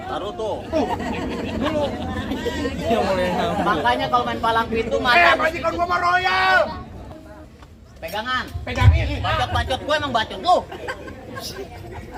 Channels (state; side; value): identical; both; correlation 1.00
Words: tuh. Makanya kalau main palang pintu mata Majikan gua mah royal. pegangan. Pegangin. Bacot-bacot gue emang bacot lu.